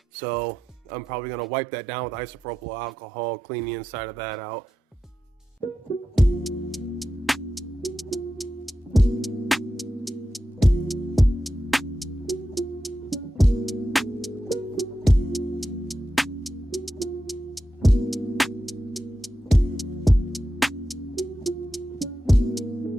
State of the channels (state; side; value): normal; both; correlation 0.90